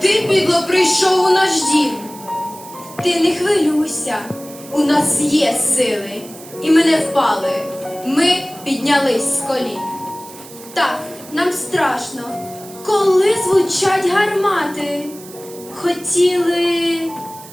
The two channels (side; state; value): right; noise; hiss, 18 dB below the sound